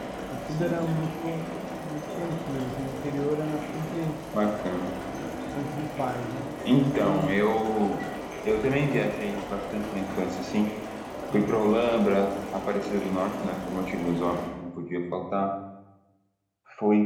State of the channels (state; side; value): identical; both; correlation 1.00